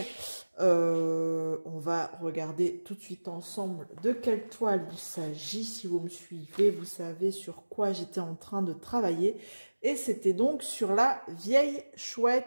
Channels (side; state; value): both; inverted; correlation -1.00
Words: On va regarder tout de suite ensemble de quelle toile il s'agit. Si vous me suivez, vous savez sur quoi j'étais en train de travailler. Et c'était donc sur la vieille